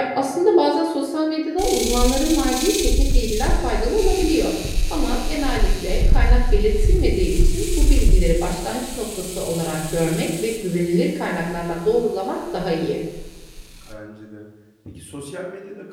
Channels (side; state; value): both; identical; correlation 1.00